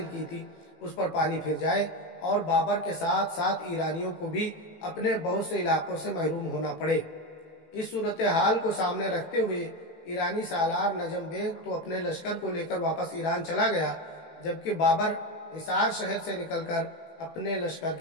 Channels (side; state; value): right; late; 18 ms